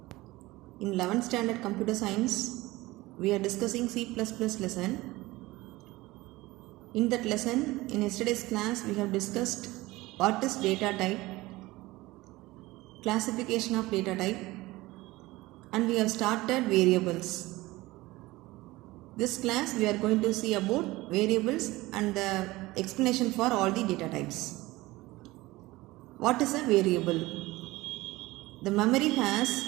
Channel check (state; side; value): quieter; left; 19.6 dB